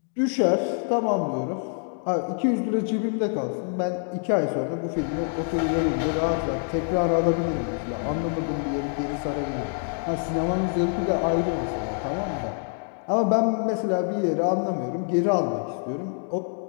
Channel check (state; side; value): silent; right; 55 dB below the other